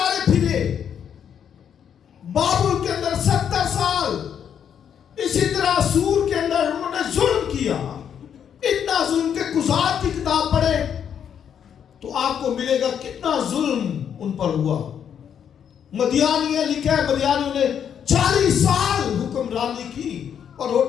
پھرے. بابل کے اندر 70 سال، اسی طرح سور کے اندر انہوں نے ظلم کیا. اتنا ظلم کہ قضات کی کتاب پڑھے تو آپ کو ملے گا کتنا ظلم ان پر ہوا. مدیانیاں لکھا ہے، مدیانیوں نے 40 سال حکمرانی کی اور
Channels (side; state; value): right; quieter; 8.4 dB